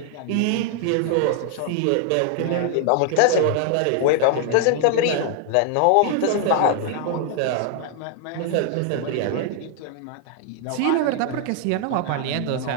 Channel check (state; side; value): different; both; correlation 0.00